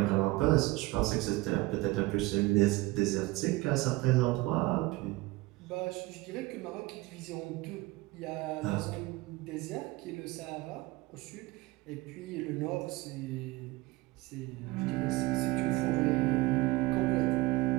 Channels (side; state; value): left; quieter; 20.9 dB